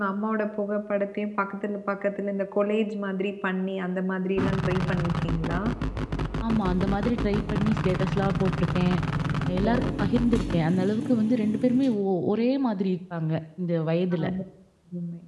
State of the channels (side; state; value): both; identical; correlation 1.00